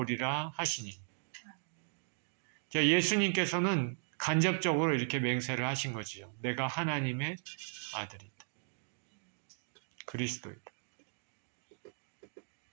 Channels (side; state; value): left; silent; digital silence